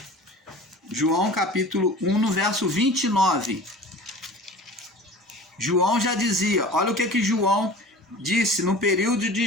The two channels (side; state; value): both; normal; correlation 0.40